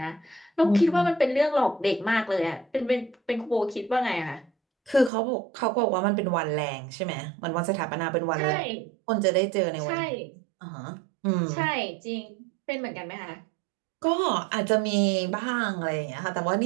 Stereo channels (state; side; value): drops out; left; at 5.1 s